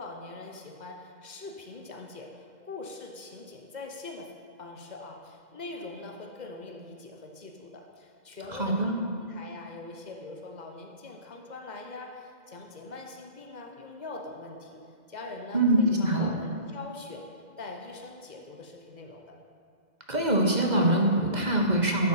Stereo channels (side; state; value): left; late; 2.0 ms